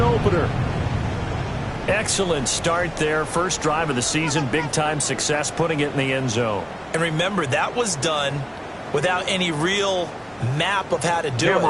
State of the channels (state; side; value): identical; both; correlation 1.00